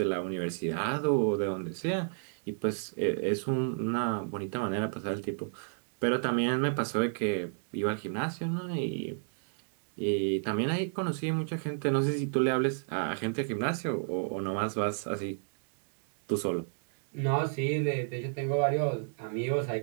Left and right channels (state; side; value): silent; left; digital silence